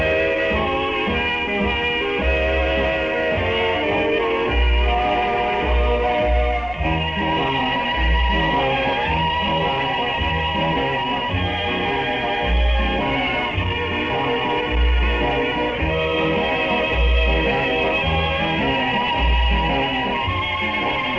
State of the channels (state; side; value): noise; left; rumble, 20 dB below the sound